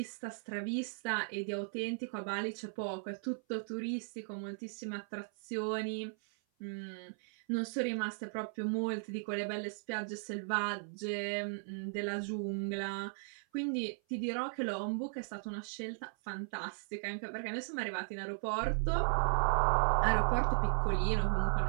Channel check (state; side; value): silent; left; 53 dB below the other